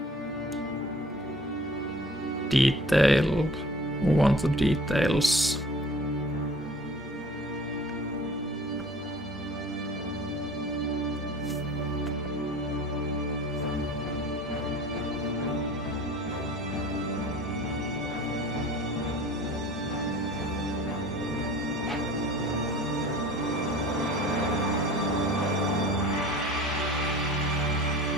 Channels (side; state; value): both; normal; correlation 0.45